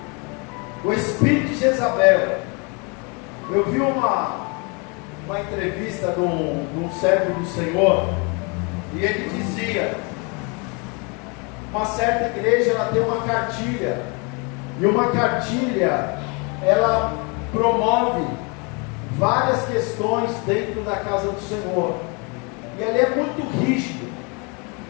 o espírito de Jezabel. Eu vi uma entrevista de um servo do Senhor, e ele dizia: uma certa igreja, ela tem uma cartilha, e uma cartilha, ela promove várias questões dentro da casa do Senhor, e ali é muito rígido,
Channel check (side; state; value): right; quieter; 32.2 dB